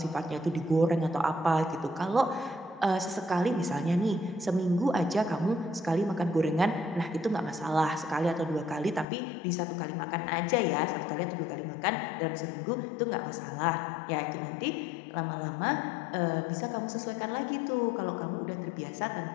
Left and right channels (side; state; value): right; drops out; at 9.1 s